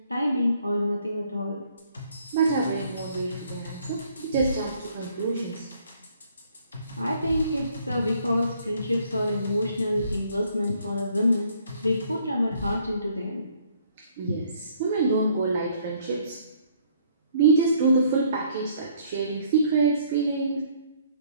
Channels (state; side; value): inverted; both; correlation -0.63